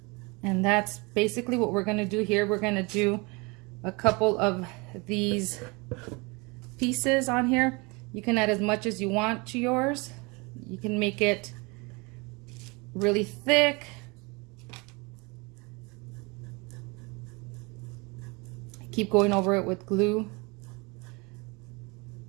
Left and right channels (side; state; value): left; quieter; 27.7 dB